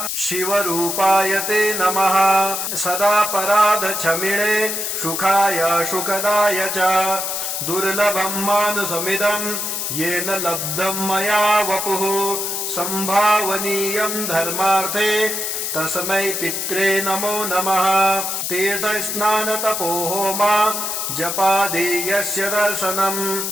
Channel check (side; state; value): left; noise; hiss, 2 dB below the sound